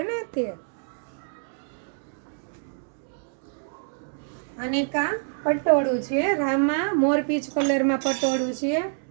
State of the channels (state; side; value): silent; left; 61 dB below the other